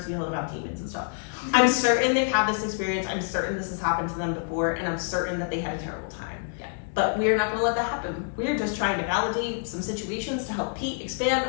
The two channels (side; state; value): right; silent; digital silence